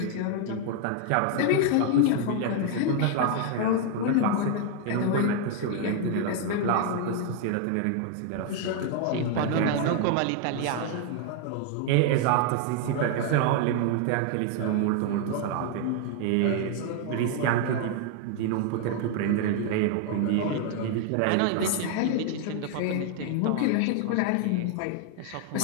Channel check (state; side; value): different; both; correlation 0.00